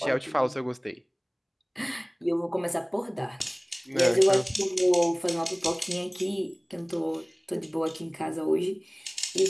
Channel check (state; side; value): identical; both; correlation 1.00